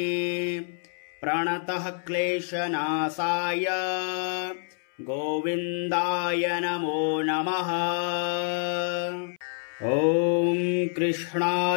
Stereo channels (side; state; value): right; silent; 60 dB below the other